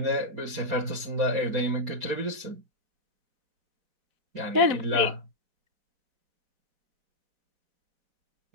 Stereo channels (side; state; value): left; late; 4.1 ms